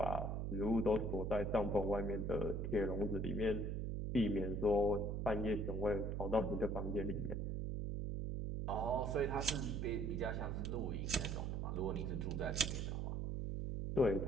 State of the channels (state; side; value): noise; right; hum, 1 dB below the sound